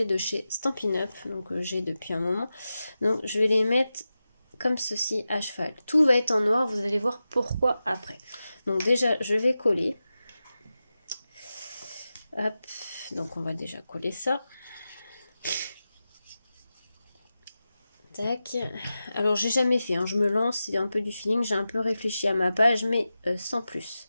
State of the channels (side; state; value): both; inverted; correlation -0.93